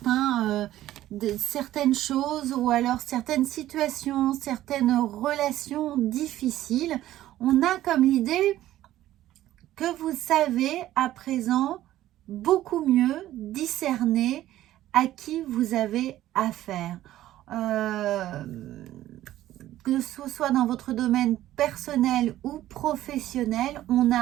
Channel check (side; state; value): left; quieter; 13.9 dB